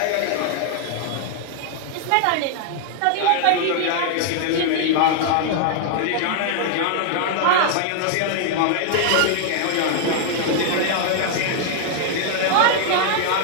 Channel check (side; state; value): both; different; correlation 0.00